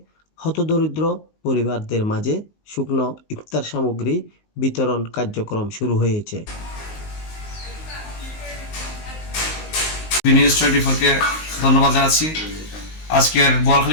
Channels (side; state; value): right; late; 19 ms